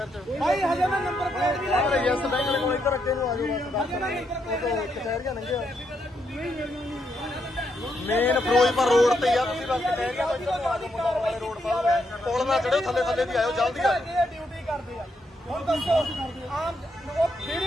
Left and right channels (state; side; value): normal; both; correlation 0.79